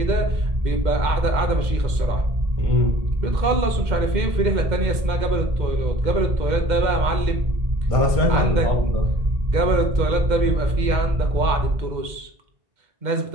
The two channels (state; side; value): late; left; 2.1 ms